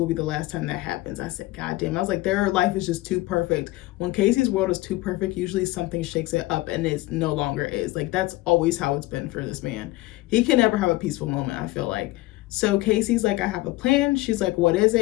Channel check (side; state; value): right; quieter; 19.0 dB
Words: be the last time that happens. I said, God damn. I was like, their life is just too perfect. When Casey's world is too perfect, usually something shakes it up and it no longer is. Like, that's always how it's been for this man. He can never have a peaceful moment, I feel like. So Casey's like, I have a plan. She's like, what is